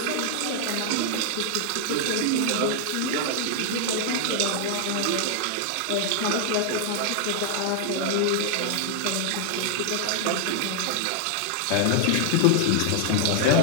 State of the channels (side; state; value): both; different; correlation 0.00